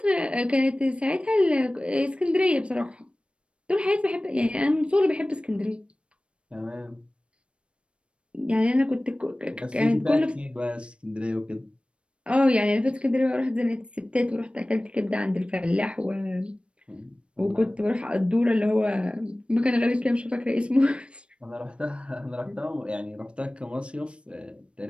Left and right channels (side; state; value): left; late; 0.058 ms